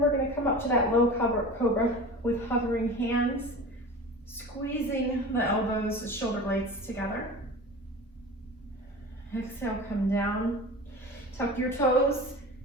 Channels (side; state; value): both; normal; correlation 0.34